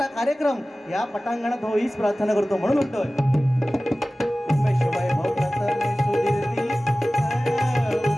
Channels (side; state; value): both; normal; correlation 0.97